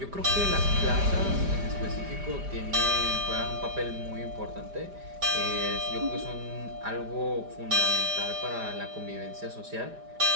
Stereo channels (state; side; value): late; left; 5.0 ms